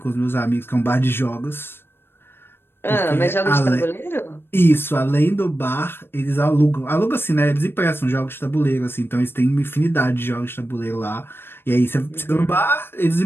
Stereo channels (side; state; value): right; late; 0.11 ms